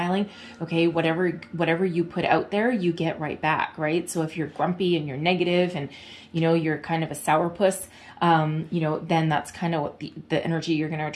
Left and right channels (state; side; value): identical; both; correlation 1.00